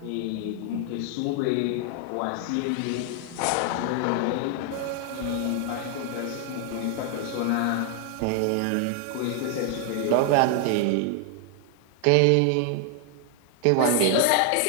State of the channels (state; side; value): different; both; correlation 0.00